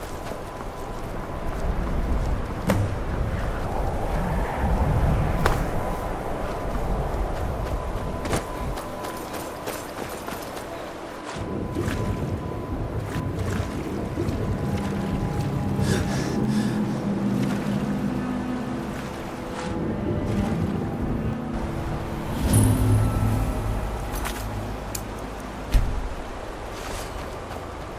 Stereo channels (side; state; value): both; identical; correlation 1.00